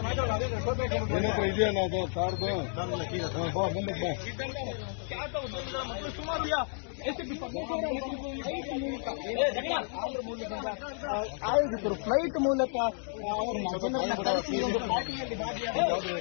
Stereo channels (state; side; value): silent; right; 57 dB below the other